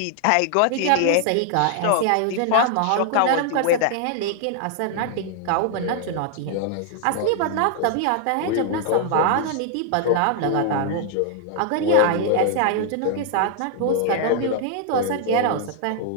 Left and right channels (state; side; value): different; both; correlation 0.00